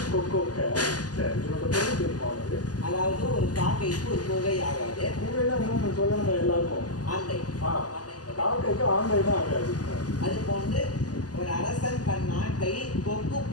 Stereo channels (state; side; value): late; right; 0.68 ms